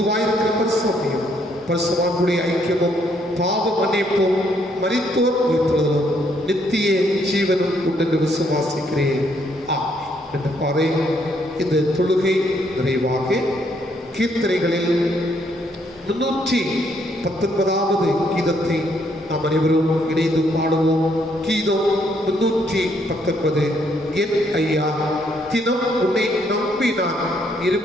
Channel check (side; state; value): both; normal; correlation 0.71